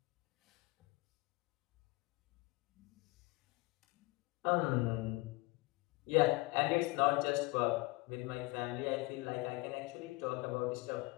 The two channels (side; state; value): right; quieter; 23.1 dB